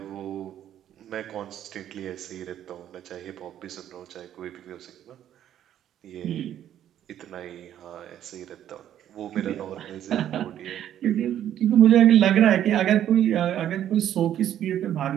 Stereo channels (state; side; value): quieter; left; 11.0 dB